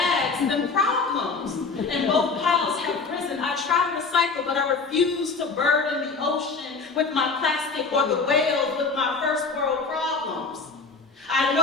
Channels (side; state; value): right; quieter; 4.5 dB